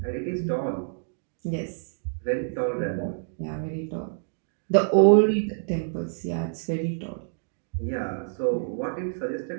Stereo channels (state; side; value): silent; left; digital silence